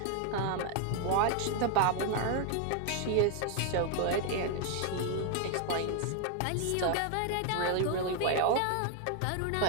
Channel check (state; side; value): different; both; correlation 0.01